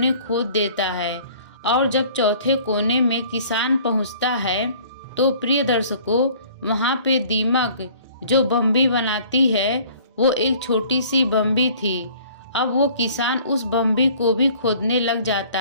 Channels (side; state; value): both; inverted; correlation -0.52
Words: खोद देता है, और जब चौथे कोने में किसान पहुंचता है तो प्रिय दर्शकों, वहां पे दीमक जो बम्बी बनाती है वो एक छोटी सी बम्बी थी। अब वो किसान उस बम्बी को भी खोदने लग जाता